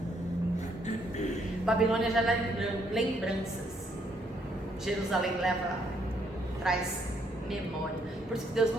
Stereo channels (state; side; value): normal; both; correlation 0.71